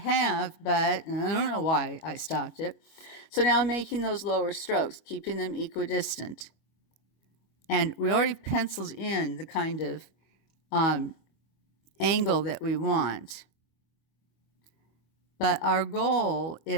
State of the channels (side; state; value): right; late; 25 ms